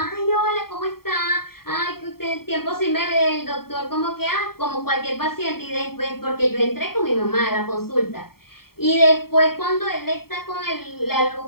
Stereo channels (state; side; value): late; right; 0.94 ms